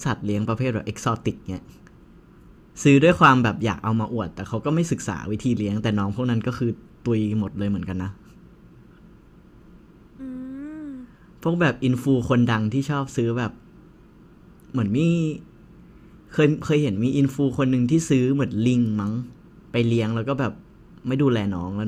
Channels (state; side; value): identical; both; correlation 1.00